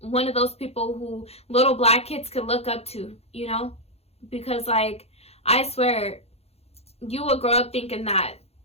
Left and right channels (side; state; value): right; late; 0.30 ms